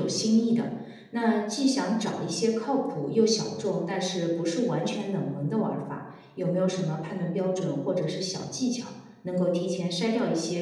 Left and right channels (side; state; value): both; identical; correlation 1.00